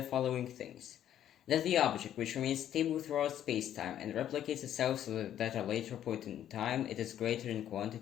following things. That the object which remains stable throughout space-time and replicates itself so that at a later point in time it is greater in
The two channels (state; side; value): quieter; right; 10.9 dB